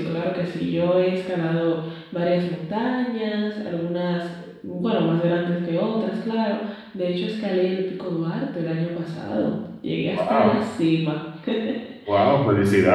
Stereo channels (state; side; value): identical; both; correlation 1.00